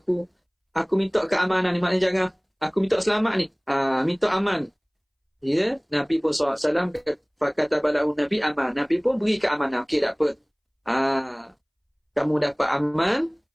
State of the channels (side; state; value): both; identical; correlation 1.00